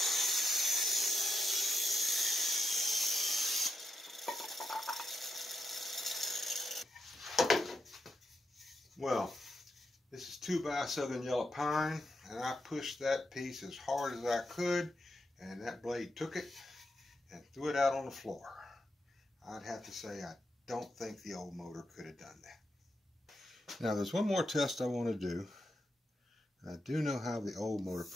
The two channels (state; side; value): normal; both; correlation 0.84